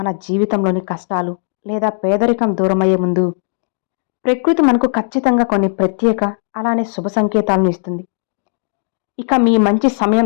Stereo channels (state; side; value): silent; right; digital silence